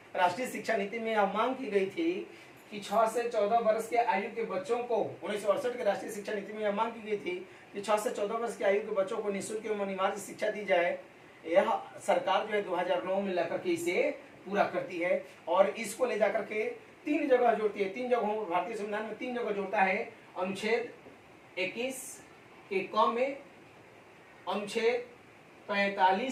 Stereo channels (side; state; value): both; identical; correlation 1.00